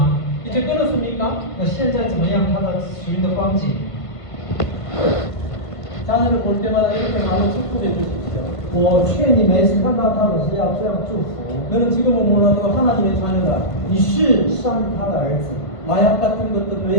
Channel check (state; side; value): late; right; 1.5 ms